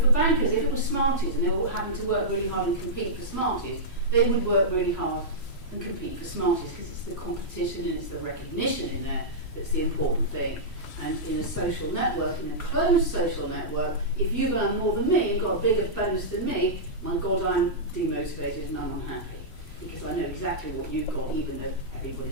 bankers, if it was Smarties and they were having to work really hard and compete for Smarties, they would work really hard and compete for Smarties because it's the competition and it's the recognition in there that's the important thing. And in a social network, in a closed social network, if you've earned more than me and got a bigger bonus than me, my God, I'm demotivated and I'm unhappy because I know exactly what you've got, even though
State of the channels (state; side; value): late; right; 3.1 ms